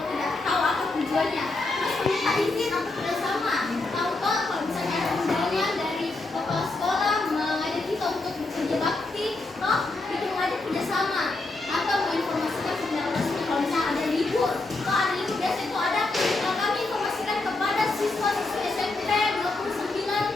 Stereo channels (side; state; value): right; quieter; 3.2 dB